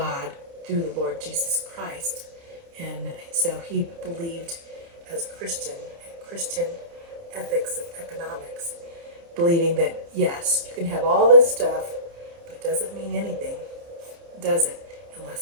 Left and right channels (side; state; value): left; late; 29 ms